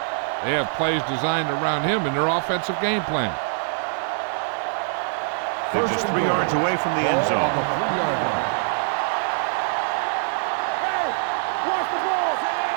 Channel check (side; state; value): left; silent; digital silence